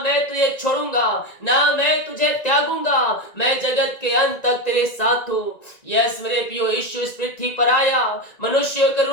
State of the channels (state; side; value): late; right; 1.9 ms